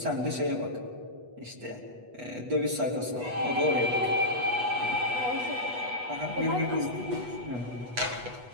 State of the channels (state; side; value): late; left; 8.2 ms